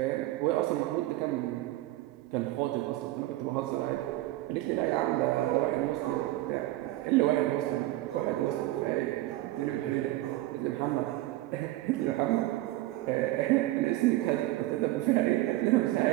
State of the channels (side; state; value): left; quieter; 16.9 dB